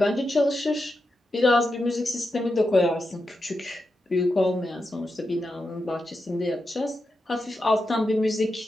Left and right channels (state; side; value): normal; both; correlation 0.88